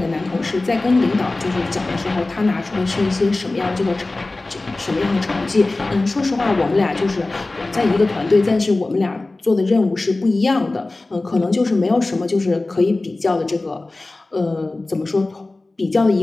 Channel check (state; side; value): quieter; right; 3.1 dB